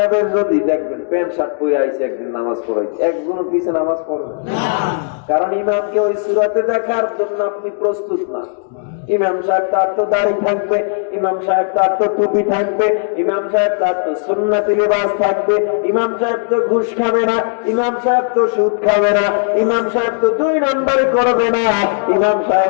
যদি দেখবেন প্যান্ট শার্ট পরে আইছে, একদিন নামাজ পড়াইছে, একজনের পিছে নামাজ পড়বে না, কারণ ইমামকে ওই সূরাতে দেখার জন্য আপনি প্রস্তুত না। ইমাম সাহেব তার তো দাড়ি থাকবে, ইমাম সাহেব তার তো টুপি থাকবে, ইমাম সাহেব তার তো সুন্নতি লিবাস থাকবে, ইমাম সাহেব তো ঘুষ খাবে না, ইমাম সাহেব তো সুদ খাবে না, ইমাম সাহেব তো 2 নম্বরে করবে না, ইমাম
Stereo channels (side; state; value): right; silent; digital silence